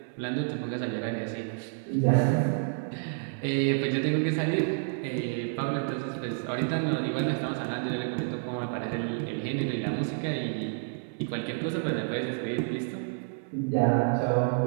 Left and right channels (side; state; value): left; silent; digital silence